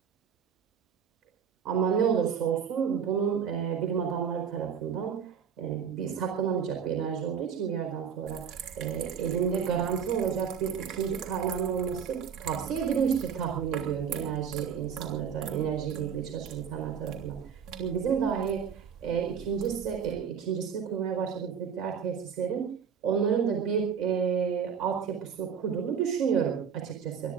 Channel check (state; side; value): quieter; left; 7.3 dB